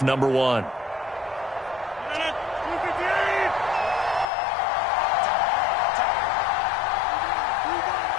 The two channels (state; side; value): drops out; right; at 4.2 s